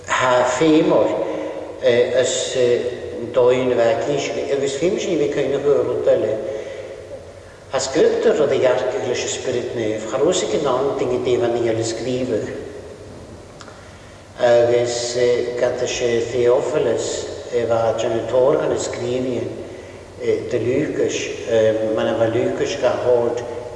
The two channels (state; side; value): identical; both; correlation 1.00